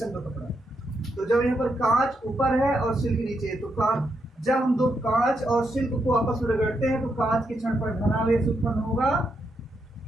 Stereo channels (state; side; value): normal; both; correlation 0.81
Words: का कपड़ा। तो जब यहाँ पर कांच ऊपर है और सिल्क नीचे है तो जब हम दो कांच और सिल्क को आपस में रगड़ते हैं तो कांच के क्षण पर धनावेश उत्पन्न होगा